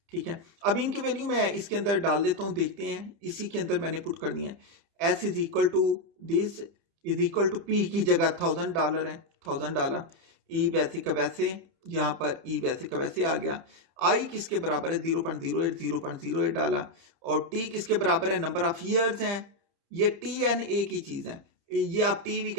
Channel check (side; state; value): left; late; 30 ms